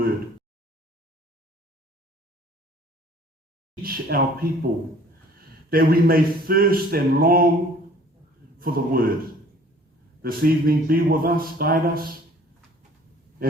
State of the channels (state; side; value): normal; both; correlation 0.53